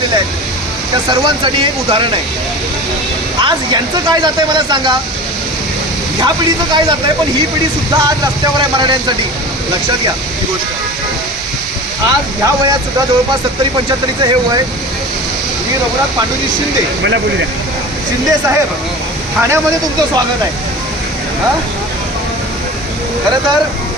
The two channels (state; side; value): normal; both; correlation 0.35